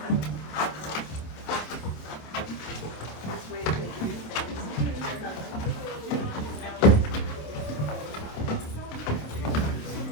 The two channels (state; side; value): late; right; 27 ms